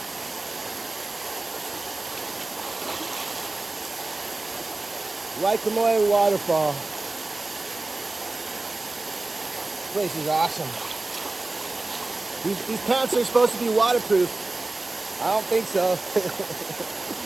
Waikamoe Waterfall. This place is awesome. These pants are supposed to be waterproof. I don't think so.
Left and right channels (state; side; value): quieter; left; 3.1 dB